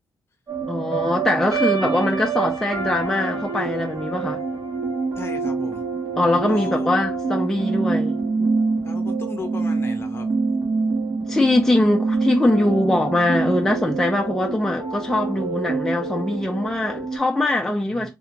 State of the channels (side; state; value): both; normal; correlation 0.82